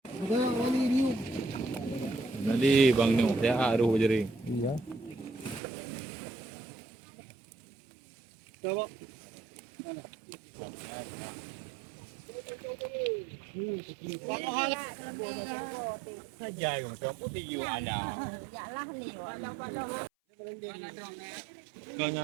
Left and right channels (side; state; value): left; drops out; at 5.6 s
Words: Nanti bang no, saya aruh jadi. Iya. Coba. Dài còn cho bút đi vô ada. Dạ là liều